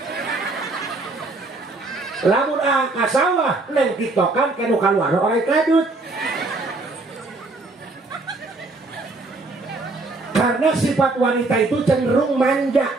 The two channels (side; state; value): left; quieter; 3.3 dB